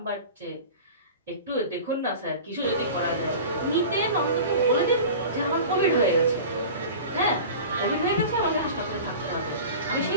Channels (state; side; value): inverted; both; correlation -0.36